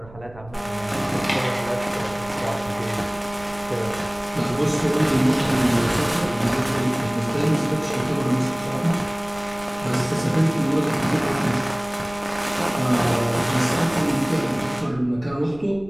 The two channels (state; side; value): noise; right; rumble, 20 dB below the sound